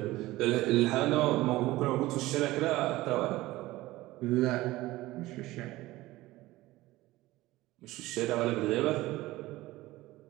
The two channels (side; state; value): left; quieter; 18.0 dB